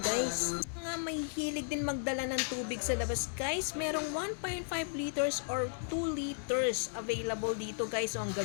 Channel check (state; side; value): silent; right; digital silence